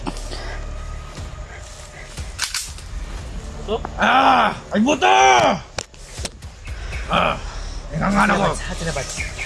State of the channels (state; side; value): identical; both; correlation 1.00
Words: Buto? Ay buto! Ingangana ko. Hati na ba?